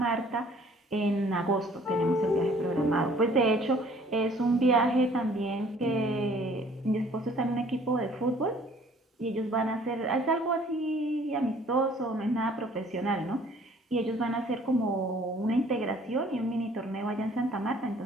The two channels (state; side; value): normal; both; correlation 0.56